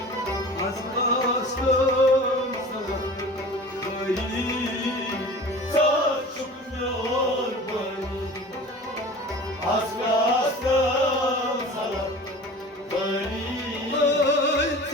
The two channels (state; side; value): normal; both; correlation 0.39